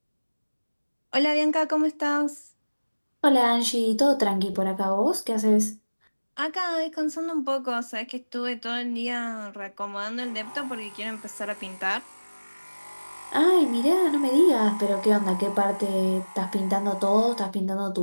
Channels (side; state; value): both; inverted; correlation -1.00